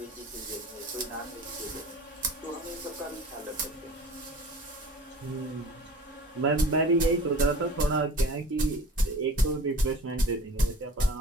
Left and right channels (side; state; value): both; normal; correlation 0.42